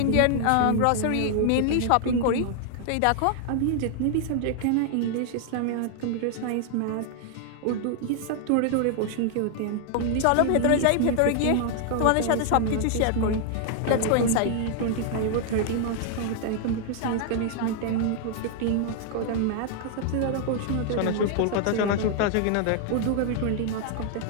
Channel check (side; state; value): both; different; correlation 0.00